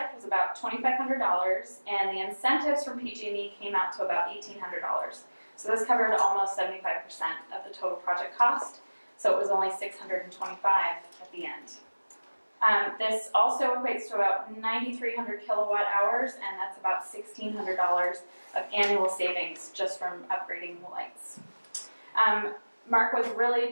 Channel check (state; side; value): inverted; both; correlation -1.00